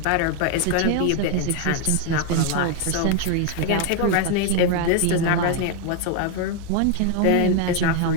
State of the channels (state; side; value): different; both; correlation 0.01